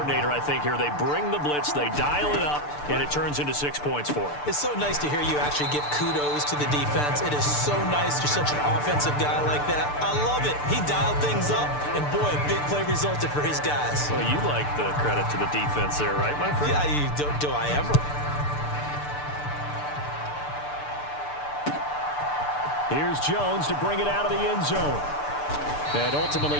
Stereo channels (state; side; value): late; right; 6.8 ms